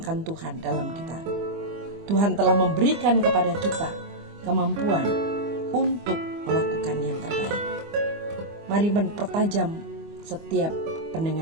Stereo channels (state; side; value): late; left; 25 ms